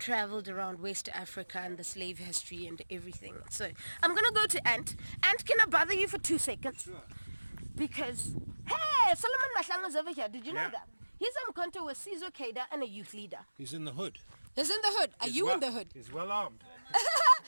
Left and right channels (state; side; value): inverted; both; correlation -1.00